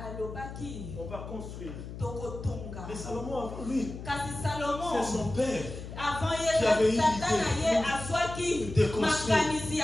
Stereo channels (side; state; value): left; noise; hum, 10 dB below the sound